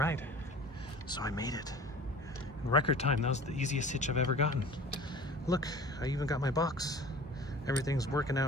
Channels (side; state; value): both; normal; correlation 0.43